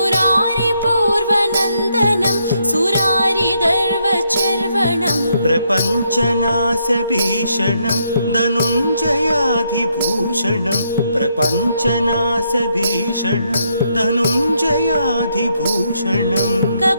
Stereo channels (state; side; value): inverted; both; correlation -0.76